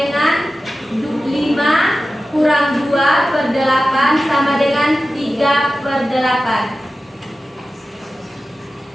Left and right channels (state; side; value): normal; both; correlation 0.94